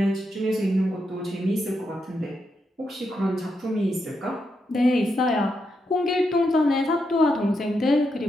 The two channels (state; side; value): normal; both; correlation 0.83